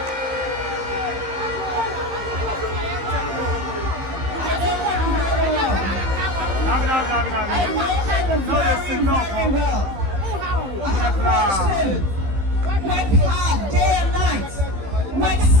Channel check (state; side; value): late; left; 15 ms